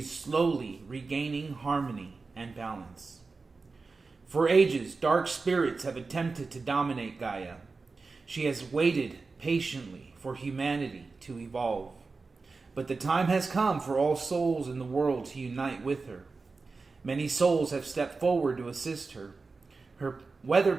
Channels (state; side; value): quieter; left; 4.1 dB